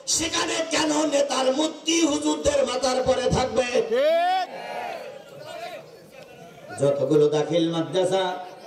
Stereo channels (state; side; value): identical; both; correlation 1.00